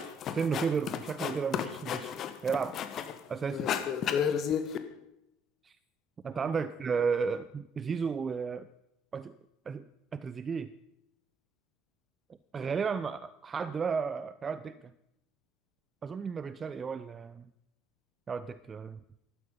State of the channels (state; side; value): normal; both; correlation 0.71